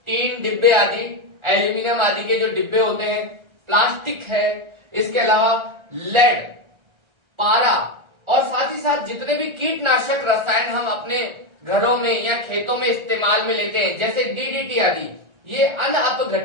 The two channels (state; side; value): late; left; 1.3 ms